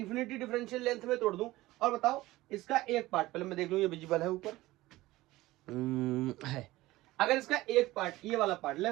डिफरेंशियल लेंथ में तोड़ दूं। और बताओ, इसका एक पार्ट पहले मैं देख लूं, ये विजिबल है ऊपर है। अगर इसका एक पार्ट, ये वाला पार्ट,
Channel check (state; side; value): quieter; left; 18.0 dB